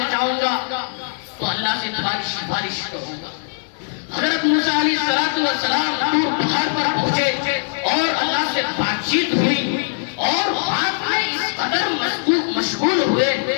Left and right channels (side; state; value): right; silent; digital silence